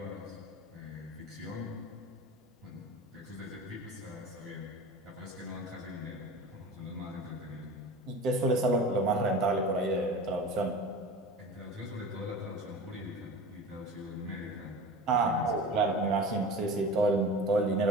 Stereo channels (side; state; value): both; normal; correlation 0.35